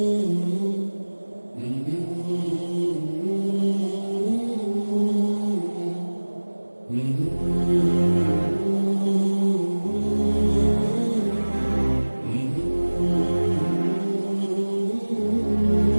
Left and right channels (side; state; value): both; inverted; correlation -1.00